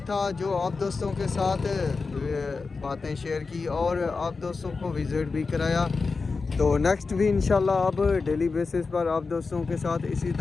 था जो आप दोस्तों के साथ बातें शेयर की और आप दोस्तों को विज़िट भी कराया। तो नेक्स्ट भी इंशाल्लाह अब डेली बेसिस पर आप दोस्तों के साथ इसी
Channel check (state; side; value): quieter; right; 4.4 dB